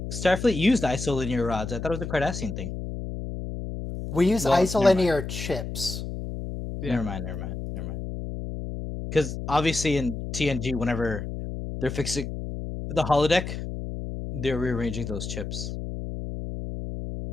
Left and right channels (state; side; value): noise; left; hum, 6 dB below the sound